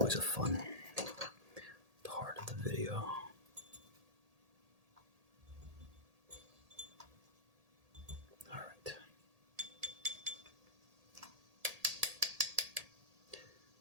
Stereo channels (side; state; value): left; late; 1.8 ms